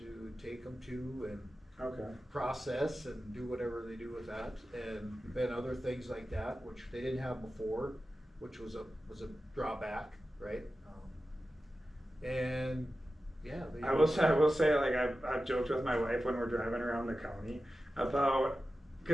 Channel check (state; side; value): normal; both; correlation 0.93